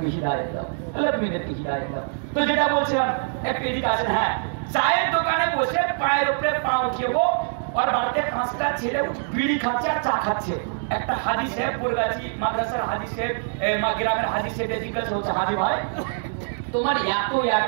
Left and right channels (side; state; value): left; silent; digital silence